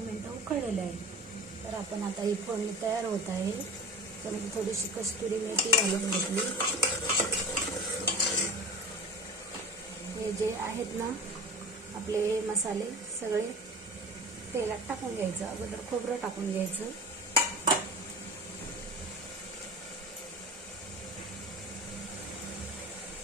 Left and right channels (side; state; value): both; normal; correlation 0.34